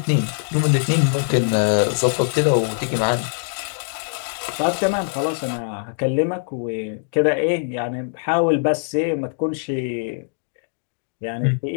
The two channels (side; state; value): right; silent; 64 dB below the other